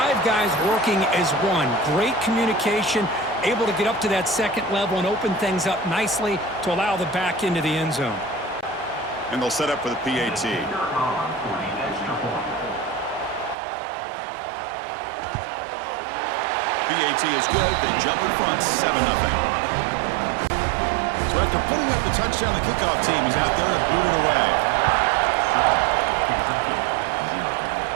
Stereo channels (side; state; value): left; drops out; at 13.6 s